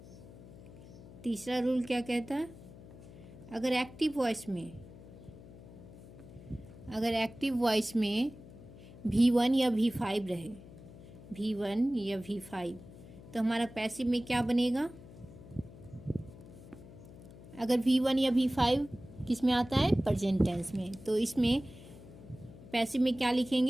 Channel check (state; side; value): noise; left; hum, 18 dB below the sound